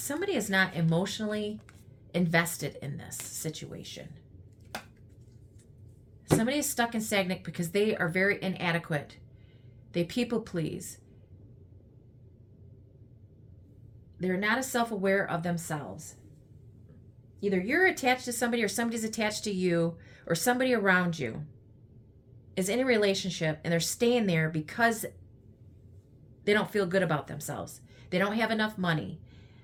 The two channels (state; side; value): identical; both; correlation 1.00